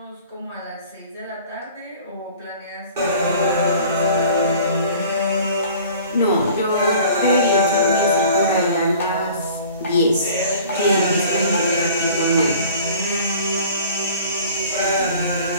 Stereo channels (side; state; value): both; inverted; correlation -0.47